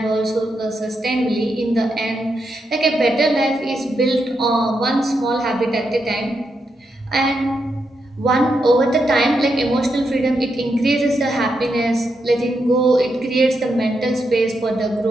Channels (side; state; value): both; normal; correlation 0.83